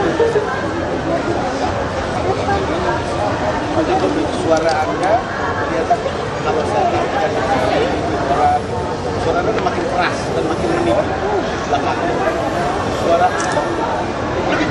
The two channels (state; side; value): identical; both; correlation 1.00